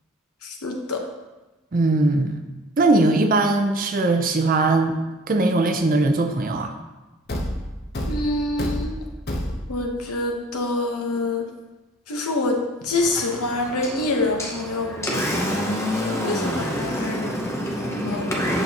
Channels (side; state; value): both; normal; correlation 0.47